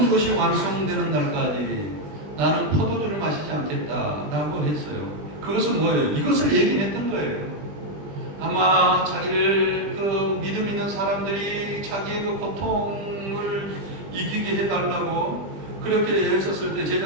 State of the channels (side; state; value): left; late; 20 ms